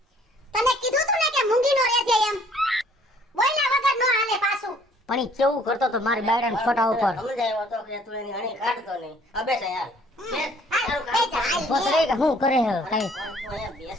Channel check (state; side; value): normal; both; correlation 0.59